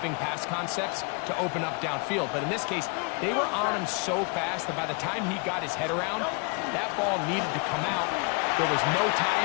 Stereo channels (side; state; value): right; quieter; 33.9 dB